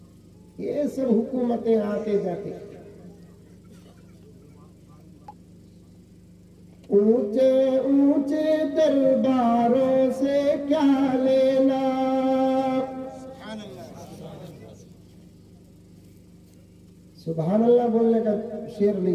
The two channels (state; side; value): identical; both; correlation 1.00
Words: ये सब हुकूमतें आते जाते, ऊंचे ऊंचे दरबारों से क्या लेना। सुभान अल्लाह बोलने का शेर